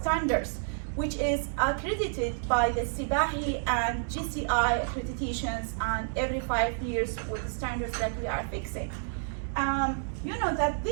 which is accredited by the CBAHI and GCI accreditations, and every 5 years with the standards that we are fixing. You know that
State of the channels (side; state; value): left; silent; digital silence